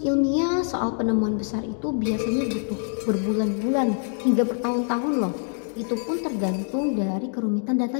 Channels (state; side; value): silent; right; 56 dB below the other